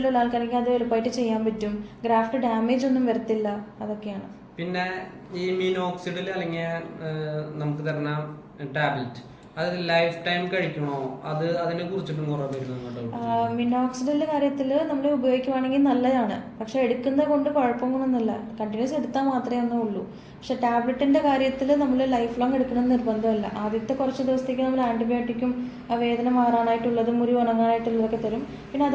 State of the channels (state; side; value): identical; both; correlation 1.00